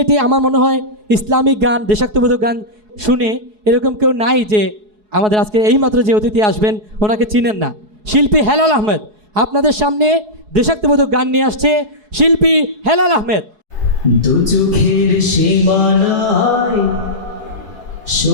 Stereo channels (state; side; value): late; left; 4.7 ms